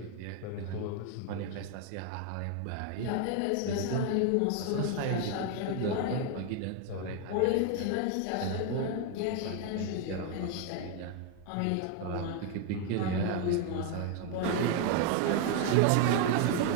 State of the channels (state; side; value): different; both; correlation 0.01